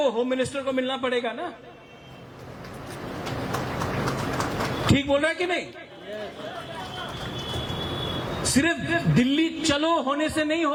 होम मिनिस्टर को मिलना पड़ेगा ना। ठीक बोल रहा है कि नहीं? सिर्फ दिल्ली चलो होने से नहीं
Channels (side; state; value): both; identical; correlation 1.00